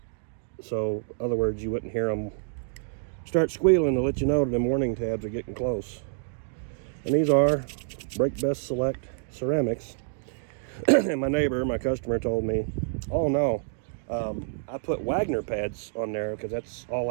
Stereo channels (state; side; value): silent; left; digital silence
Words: So, in other words, you wouldn't hear them start squealing to let you know that them warning tabs are getting close. And these are Brake Best Select ceramics. And my neighbor, my customer, told me, oh no, I put Wagner pads on there because that's all